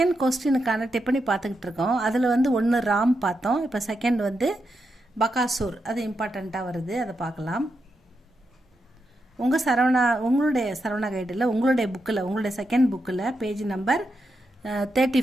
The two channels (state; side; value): normal; both; correlation 0.85